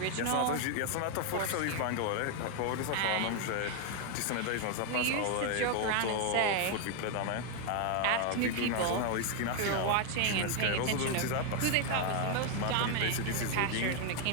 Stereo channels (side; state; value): both; different; correlation 0.00